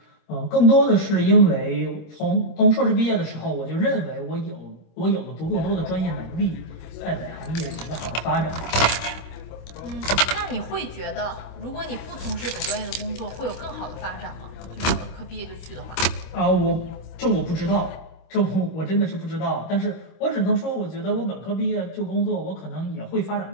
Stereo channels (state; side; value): late; right; 26 ms